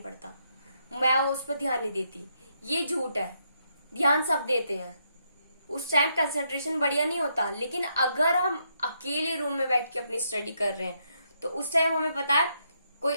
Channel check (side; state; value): both; inverted; correlation -0.77